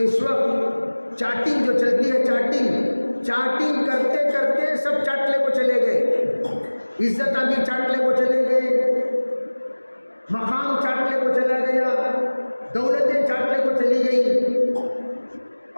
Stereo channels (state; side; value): inverted; both; correlation -1.00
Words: وقت چاٹنگ جو چلتی ہے, چاٹنگ کرتے کرتے سب چاٹلے کو چلے گئے. عزت آگے چاٹلے کو چلے گئے, مقام چاٹلے کو چلا گیا, دولتیں چاٹلے کو چلی گئی,